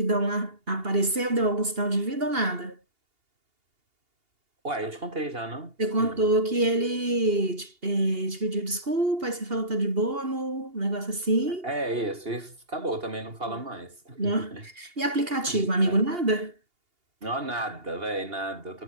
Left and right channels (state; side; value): late; left; 2.8 ms